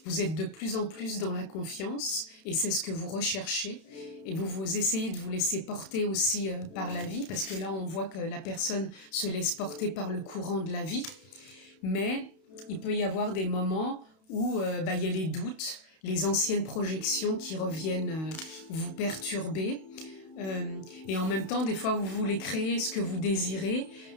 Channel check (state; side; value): late; right; 32 ms